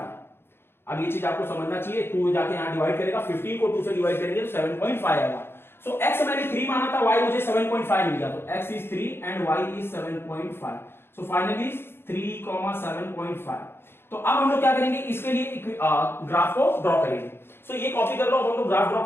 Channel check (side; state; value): right; late; 0.11 ms